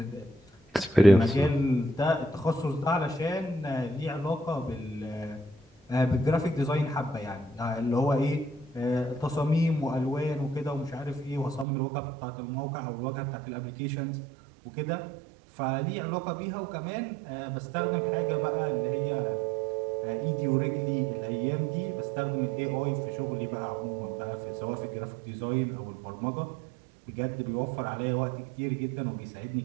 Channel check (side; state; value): left; drops out; at 11.7 s